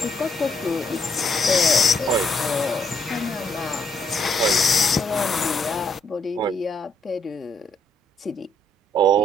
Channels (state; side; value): normal; both; correlation 0.71